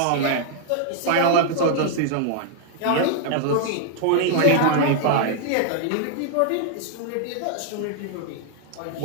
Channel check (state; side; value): different; both; correlation 0.00